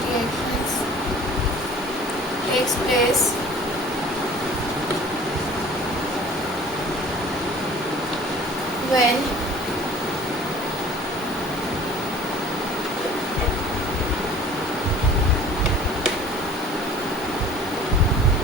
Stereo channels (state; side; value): normal; both; correlation 0.47